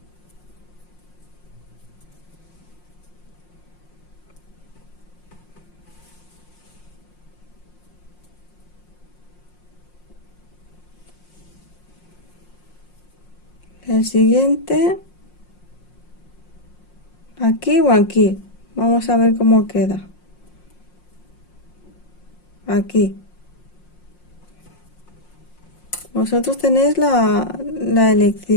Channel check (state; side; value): late; right; 5.6 ms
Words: El siguiente aquí o aquí. Vamos a ver cómo queda. Aquí. Vosotros tenéis la